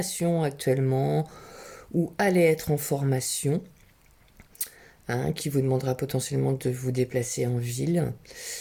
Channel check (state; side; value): identical; both; correlation 1.00